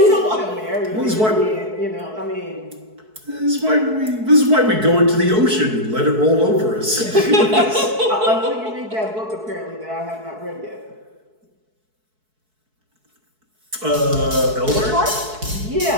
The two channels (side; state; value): left; late; 4.6 ms